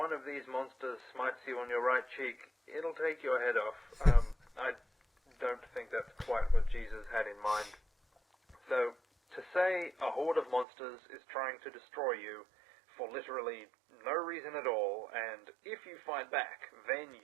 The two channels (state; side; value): drops out; left; at 10.7 s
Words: of these monsters smites you on your right cheek, it'll take your head off. I don't think that's quite what Jesus had in mind. So, to say a horde of monsters is trying to destroy you for literally no reason at all, and if you fight back, then